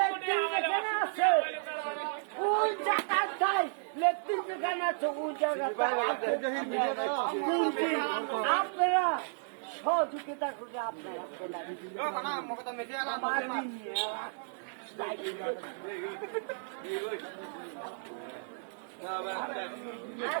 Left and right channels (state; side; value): silent; left; digital silence